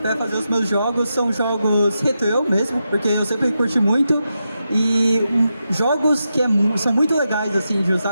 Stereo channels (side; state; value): both; inverted; correlation -0.87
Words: para fazer os meus jogos são jogos retrô mesmo, porque eu sempre curti muito. E jogos que são muito legais assim de